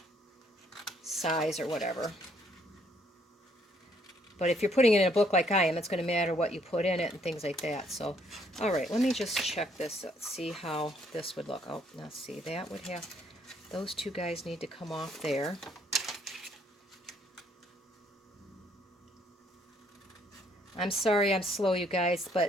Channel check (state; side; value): normal; both; correlation 0.67